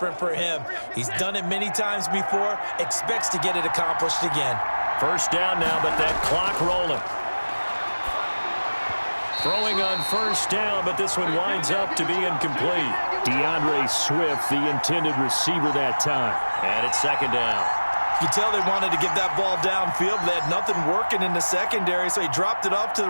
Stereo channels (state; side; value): inverted; both; correlation -1.00